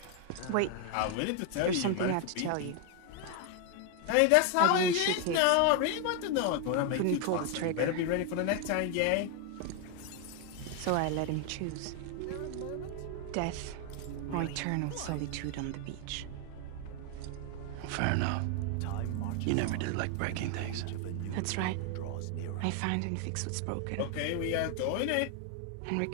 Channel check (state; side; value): different; both; correlation 0.01